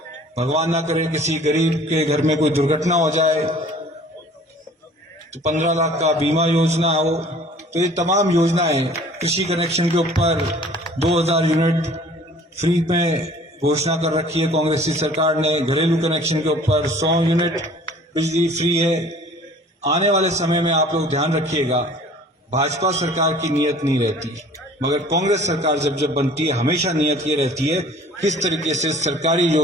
भगवान ना करे किसी गरीब के घर में कोई दुर्घटना हो जाए तो 15 लाख का बीमा योजना हो। तो ये तमाम योजनाएं, कृषि कनेक्शन के ऊपर 2000 यूनिट फ्री में घोषणा कर रखी है कांग्रेस की सरकार ने। घरेलू कनेक्शन के ऊपर 100 यूनिट बिजली फ्री है। आने वाले समय में आप लोग ध्यान रखिएगा, भाजपा सरकार की नीयत नहीं रहती, मगर कांग्रेस सरकार जब बनती है हमेशा नियत ये रहती है किस तरीके से सरकारी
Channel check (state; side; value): normal; both; correlation 0.50